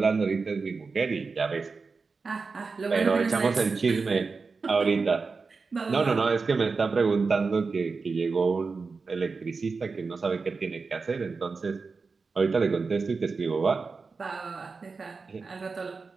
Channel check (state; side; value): quieter; left; 4.5 dB